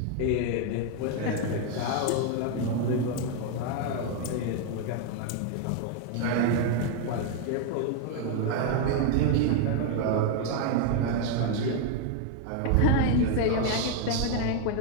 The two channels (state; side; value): different; both; correlation 0.00